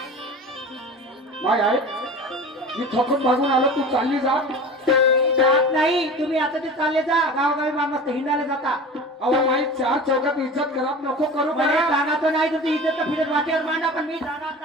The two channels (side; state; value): both; normal; correlation 0.35